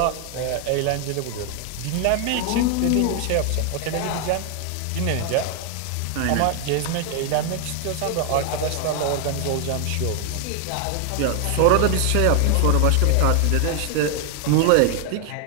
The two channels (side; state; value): both; different; correlation 0.00